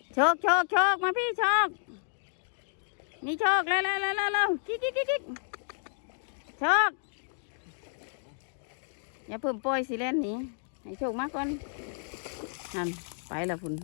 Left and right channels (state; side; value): silent; right; digital silence